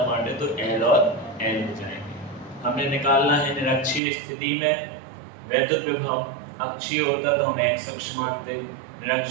बांटे तो एल और एल हो जाएंगे। हमने निकालना है निरक्षीय स्थिति में वैद्युत विभव, अक्षीय होता तो हम एक्स अक्ष मानते,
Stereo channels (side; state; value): left; drops out; at 4.0 s